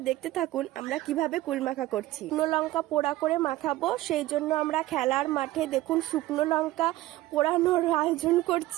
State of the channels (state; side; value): quieter; left; 16.5 dB